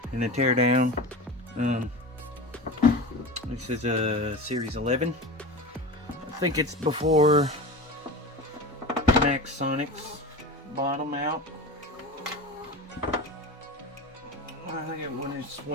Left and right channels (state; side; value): normal; both; correlation 0.28